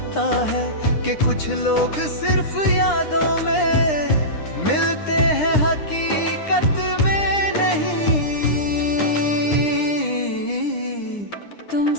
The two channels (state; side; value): late; right; 9.8 ms